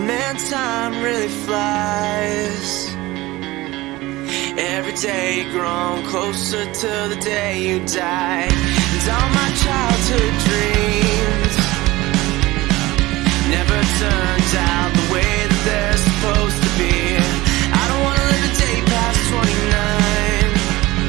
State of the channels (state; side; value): quieter; left; 19.4 dB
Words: Man, time really flies. Every day grown closer to the day you die. And all my childhood dreams never turned out the way that they're supposed to be. I don't wanna live a day past 29.